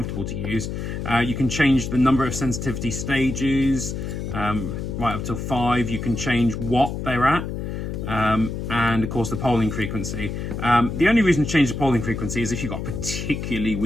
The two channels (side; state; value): left; noise; hum, 5 dB below the sound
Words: to use. You can change the number of sensitivity stages right up to 5. You can change what they're at, and of course the polling frequency. The only reason to change the polling frequency is if you've got a particularly